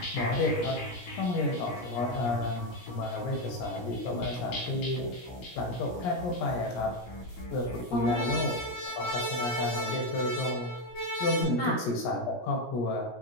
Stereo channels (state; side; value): late; right; 17 ms